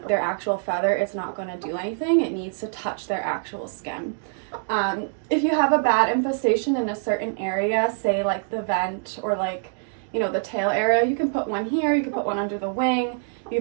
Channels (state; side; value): silent; left; digital silence